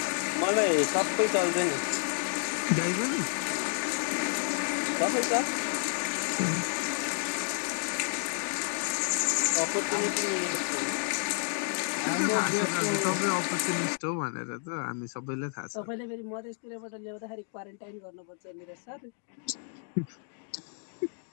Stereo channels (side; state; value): right; silent; 58 dB below the other